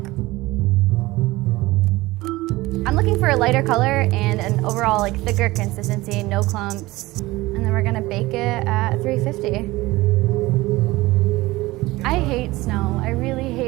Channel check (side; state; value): left; quieter; 19.6 dB